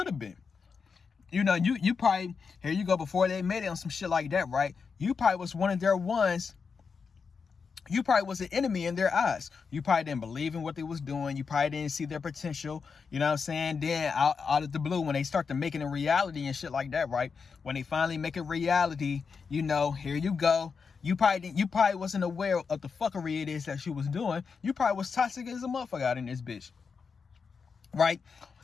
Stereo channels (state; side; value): quieter; right; 5.5 dB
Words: have been. You know, you probably, here you go, before they made it on some shit like that, right? You probably was one of their ones. You probably was an enemy in their eyes. You probably didn't believe in what they was doing. You probably didn't see their potential. You know what I'm saying? Then out of the blue, when they start to make it a reality and shit like that, right? When they finally make it reality, you know, here you go. You probably wasn't aware of the fuckery it is that she was doing. You probably was toxic as a motherfucker out in this bitch. Right?